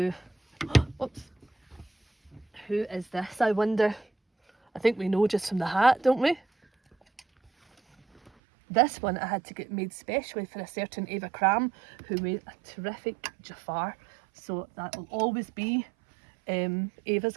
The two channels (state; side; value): drops out; left; at 8.3 s